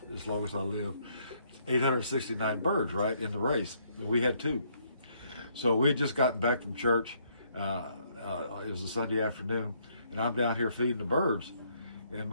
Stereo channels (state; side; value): inverted; both; correlation -0.69